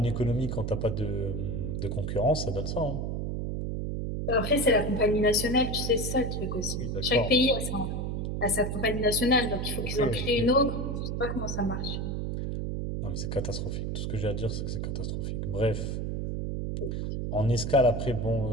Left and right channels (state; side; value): noise; right; hum, 2 dB below the sound